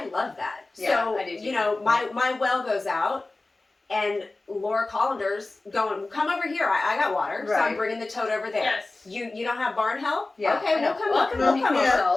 love that. Yeah, So, I do too. my well goes out, and Laura Collander's going, come over here. I got water, so I'm Right. bringing the tote over there. Yes. You don't have barn help? Yeah, Okay, I know. we'll come Welcome we'll to come People over.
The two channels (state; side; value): quieter; right; 3.2 dB